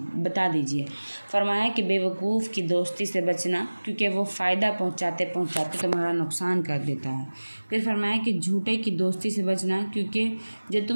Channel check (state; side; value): inverted; both; correlation -1.00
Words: دیجئے۔ فرمایا کہ بے وقوف کی دوستی سے بچنا، کیونکہ وہ فائدہ پہنچاتے تمہارا نقصان کر دیتا ہے۔ پھر فرمایا کہ جھوٹے کی دوستی سے بچنا، کیونکہ جو